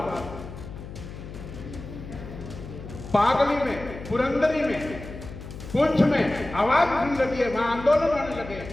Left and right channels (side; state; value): left; noise; hum, 12 dB below the sound